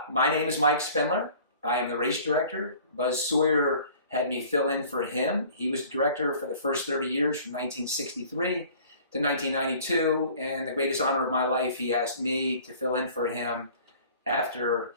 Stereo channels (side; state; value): both; inverted; correlation -0.49